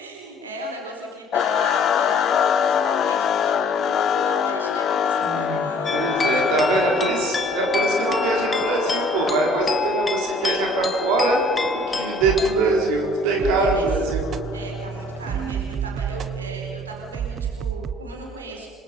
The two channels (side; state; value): both; normal; correlation 0.54